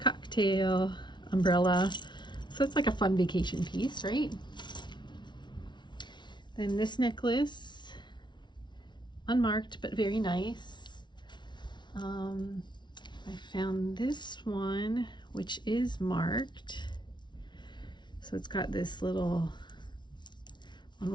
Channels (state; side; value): late; right; 0.22 ms